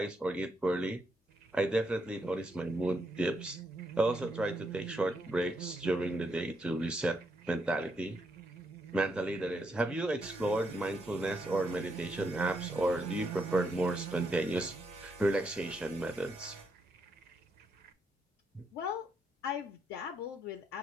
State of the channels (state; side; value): normal; both; correlation 0.78